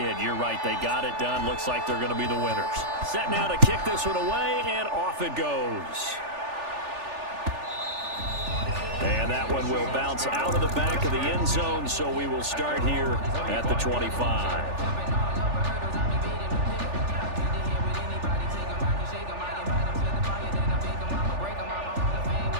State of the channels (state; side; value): late; left; 3.4 ms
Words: You're right. They got it done. Looks like they're going to be the winners. Set now to kick this one away, and off it goes. And that one will bounce out of the back of the end zone, so we will start here at the 25.